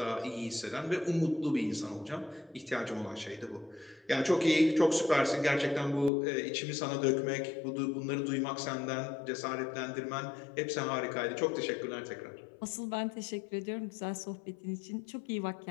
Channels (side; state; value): right; drops out; at 6.1 s